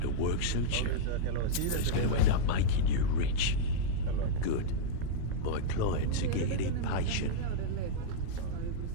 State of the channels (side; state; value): both; different; correlation -0.02